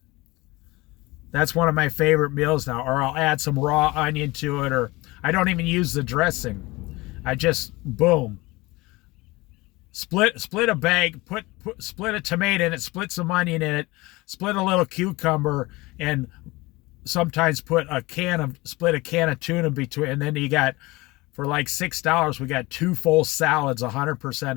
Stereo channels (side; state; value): right; quieter; 21.9 dB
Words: That's one of my favorite meals now. Or I'll add some raw onion to it, or I don't even use the dressing. I just, boom. Split a bag, split a tomato in it, split some onion in it, split a little cucumber, and sometimes split a can of tuna between, and then you got, for like $6, we got 2 full salads,